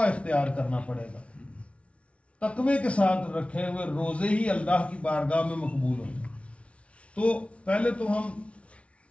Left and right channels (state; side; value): late; right; 0.062 ms